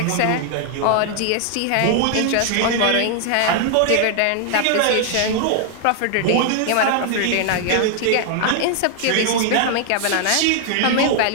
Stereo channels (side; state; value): both; different; correlation 0.00